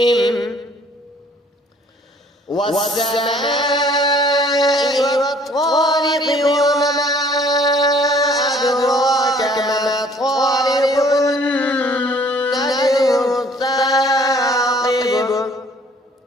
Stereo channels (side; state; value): both; normal; correlation 0.56